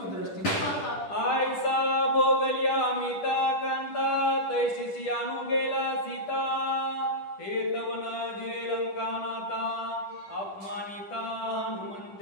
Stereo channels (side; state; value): right; late; 10 ms